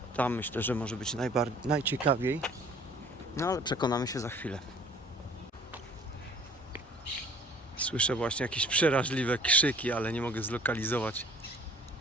Tam myślę, że może być najciekawiej. No ale przekonamy się za chwilę. Słyszę właśnie jakieś przeraźliwe krzyki, ale nie mogę zlokalizować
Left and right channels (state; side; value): normal; both; correlation 0.52